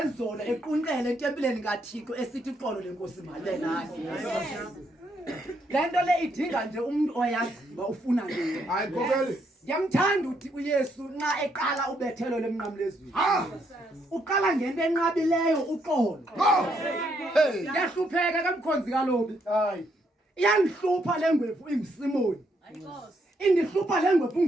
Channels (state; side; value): normal; both; correlation 0.74